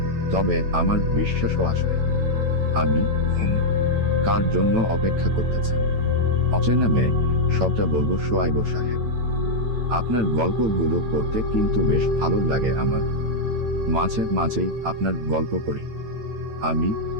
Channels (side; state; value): left; late; 9.1 ms